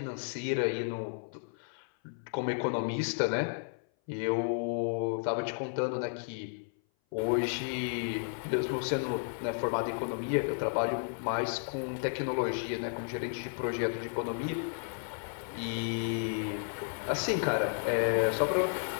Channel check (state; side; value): silent; right; 56 dB below the other